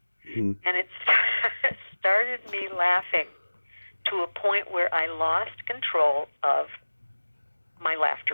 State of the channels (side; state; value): both; inverted; correlation -1.00